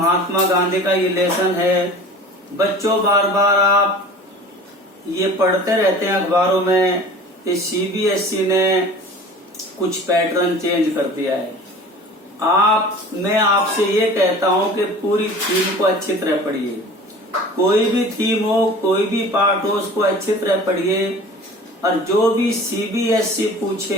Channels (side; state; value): both; normal; correlation 0.41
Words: गांधी का ये लेसन है। बच्चों बार बार आप ये पढ़ते रहते हैं अखबारों में कि सीबीएसई ने कुछ पैटर्न चेंज कर दिया है। मैं आपसे ये कहता हूं कि पूरी थीम को अच्छी तरह पढ़िए। कोई भी थीम हो, कोई भी पार्ट हो, उसको अच्छी तरह पढ़िए और जो भी सीबीएसई